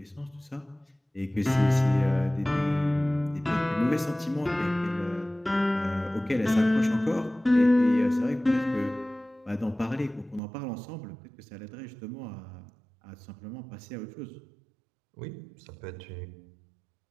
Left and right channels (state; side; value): drops out; left; at 10.4 s